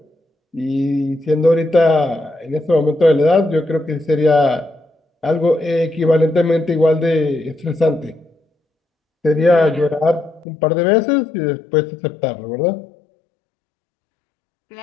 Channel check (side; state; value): right; drops out; at 10.5 s